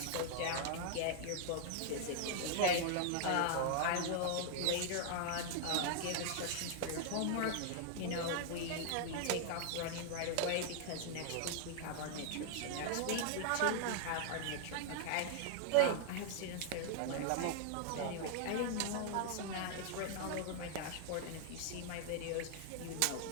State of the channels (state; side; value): different; both; correlation 0.00